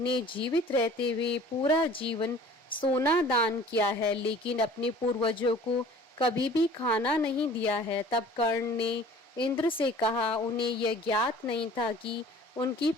जीवित रहते हुए पूरा जीवन सोना दान किया है, लेकिन अपने पूर्वजों को कभी भी खाना नहीं दिया है। तब कर्ण ने इंद्र से कहा, उन्हें यह ज्ञात नहीं था कि उनकी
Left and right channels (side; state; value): both; normal; correlation 0.47